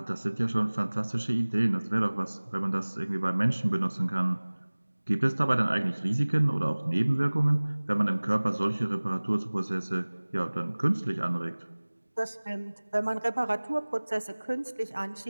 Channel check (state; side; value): inverted; both; correlation -1.00